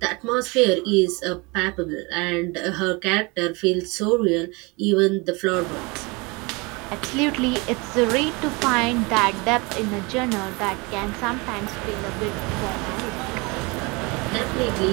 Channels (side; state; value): left; quieter; 27.0 dB